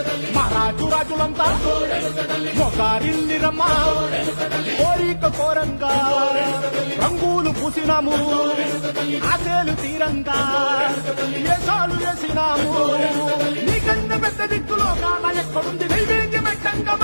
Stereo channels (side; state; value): both; inverted; correlation -1.00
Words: మహారాజు రాజులంతా మొగారిల్లిరమ్మా కోరిక కోరంగా రంగులు పూసినాము ఆశలు తీరంగా వేషాలు వేసినాము నీకన్నా పెద్ద దిక్కులో కాల ఎక్కడుంది నైవేద్యం ఎట్టంగా